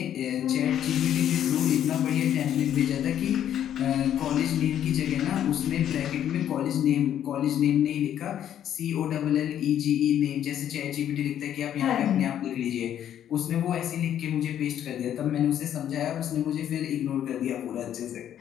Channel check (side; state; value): right; quieter; 10.4 dB